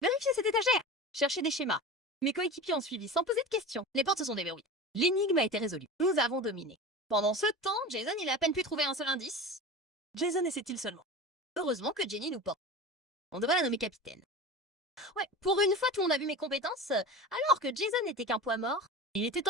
Vérifier cette étagère, chercher des schémas. Mes coéquipiers ont suivi sans poser de questions. Les portes se sont déverrouillées. L'énigme a été résolue. Nous avons dominé. Pendant ce temps, Jason, il a à peine pu trouver un seul indice. Jason essaie-t-il seulement? Heureusement que Jenny nous porte. On devrait la nommer capitaine. Ouais, pour une fois, tout le monde a vu mes compétences, alors que Jason n'était qu'un poids mort. Il était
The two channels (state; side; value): normal; both; correlation 0.32